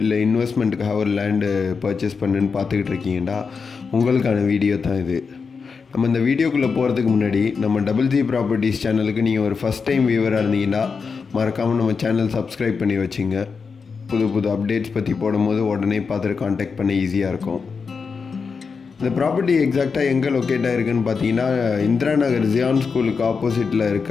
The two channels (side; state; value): right; quieter; 5.3 dB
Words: இல்லை இன்வெஸ்ட்மெண்ட்டுக்காக ஒரு லேண்டு பர்ச்சேஸ் பண்ணுன்னு பார்த்துக்கிட்டு இருக்கீங்கடா, உங்களுக்கான வீடியோ தான் இது. நம்ம இந்த வீடியோக்குள்ளே போகிறதுக்கு முன்னாடி நம்ம டபுள் ஜி ப்ராப்பர்ட்டிஸ் சேனலுக்கு நீங்கள் ஒரு ஃபஸ்ட் டைம் வியூவராக இருந்தீங்கன்னா மறக்காமல் நம்ம சேனல் சப்ஸ்கிரைப் பண்ணி வச்சுங்க. புது அப்டேட்ஸ் பற்றி போடும்போது உடனே பார்த்துட்டு காண்டாக்ட் பண்ண ஈஸியாக இருக்கும். இந்த ப்ராப்பர்ட்டி எக்ஸாக்டாக எங்கே லொக்கேட் ஆகிருக்குன்னு பார்த்தீங்கன்னா, இந்திரா நகர் ஜியான் ஸ்கூலுக்கு ஆப்போசிட்டில் இருக்க